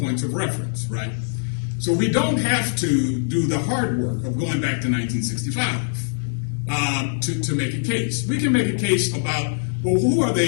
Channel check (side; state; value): right; silent; digital silence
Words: of reference, right? So we don't have to do the hard work of going back to 1965 to make a case. We can make a case about, well, who are